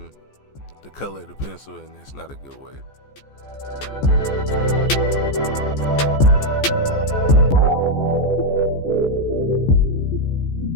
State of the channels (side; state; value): right; late; 14 ms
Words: the color of the pencil, and that's not a good way.